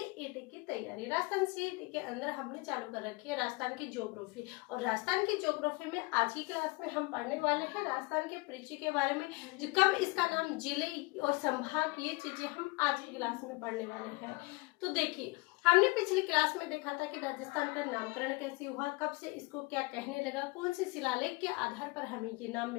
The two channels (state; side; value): quieter; right; 25.2 dB